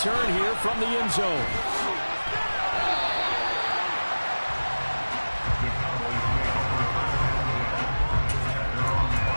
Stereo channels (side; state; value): both; inverted; correlation -1.00